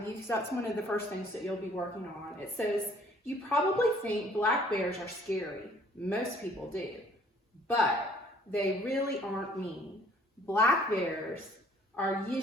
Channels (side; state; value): both; normal; correlation 0.58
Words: you because that's one of the first things that you'll be working on. It says, you probably think black bears are scary. Most people do, but they really aren't mean. Black bears are